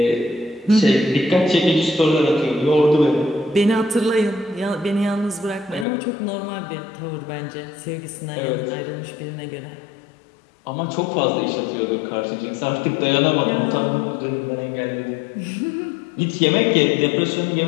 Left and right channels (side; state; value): right; drops out; at 5.9 s